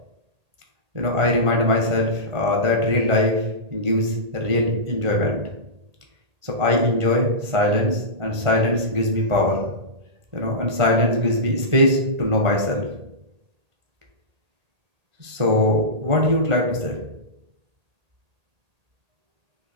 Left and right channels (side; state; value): left; late; 1.8 ms